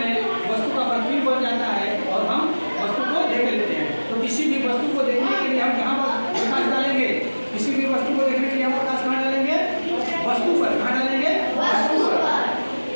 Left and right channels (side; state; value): both; inverted; correlation -1.00